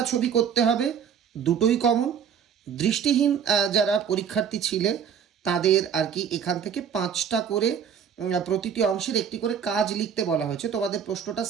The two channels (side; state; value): left; quieter; 7.7 dB